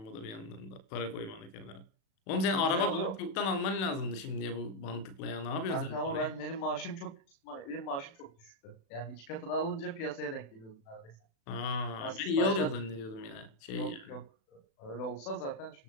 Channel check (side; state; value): right; late; 36 ms